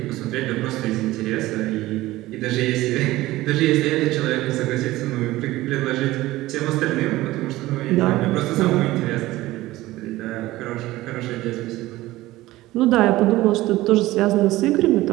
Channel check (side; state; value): left; quieter; 17.4 dB